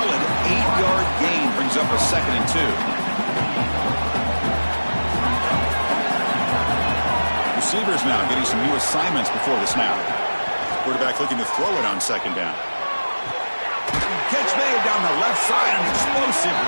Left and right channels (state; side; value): inverted; both; correlation -1.00